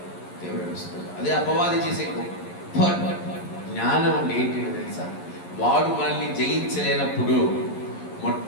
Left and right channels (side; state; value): right; late; 11 ms